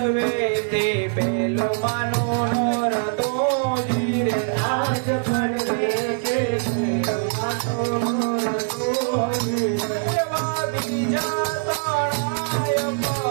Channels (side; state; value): left; silent; digital silence